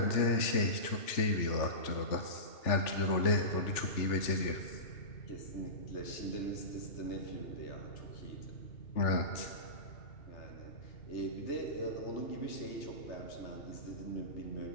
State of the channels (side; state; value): right; late; 3.4 ms